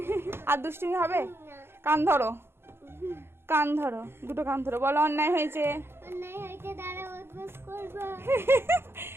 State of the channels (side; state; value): left; late; 0.11 ms